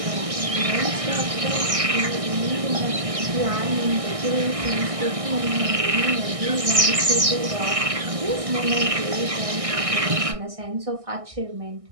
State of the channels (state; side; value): late; left; 1.6 ms